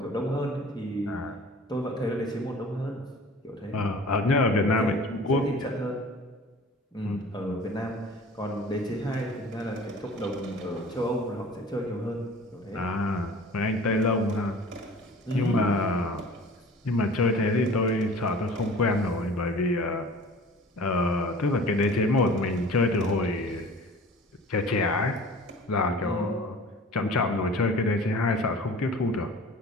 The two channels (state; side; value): normal; both; correlation 0.43